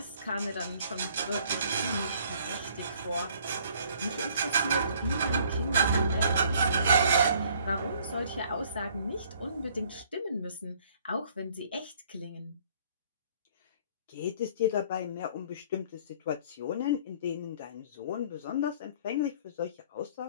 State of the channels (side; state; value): both; inverted; correlation -0.59